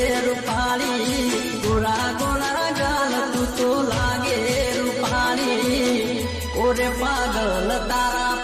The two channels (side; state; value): both; identical; correlation 1.00